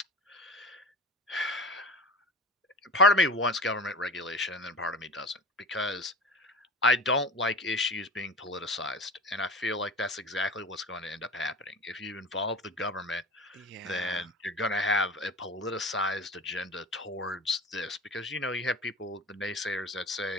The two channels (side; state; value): both; normal; correlation 0.34